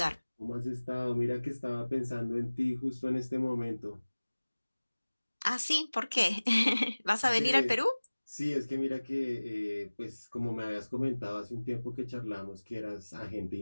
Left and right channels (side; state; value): both; inverted; correlation -1.00